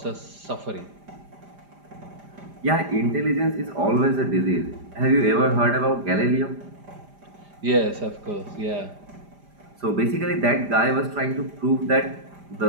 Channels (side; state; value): left; late; 5.0 ms